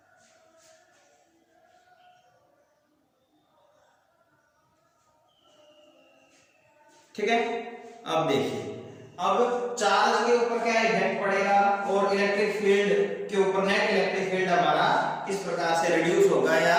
ठीक है, अब देखिए अब चार्ज के ऊपर क्या इफेक्ट पड़ेगा और इलेक्ट्रिक फील्ड के ऊपर, नेट इलेक्ट्रिक फील्ड हमारा किस प्रकार से रिड्यूस होगा या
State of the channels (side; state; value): both; identical; correlation 1.00